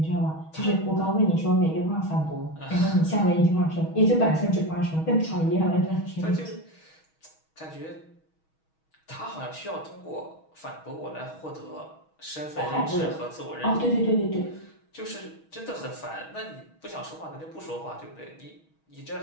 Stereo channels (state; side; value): late; right; 6.3 ms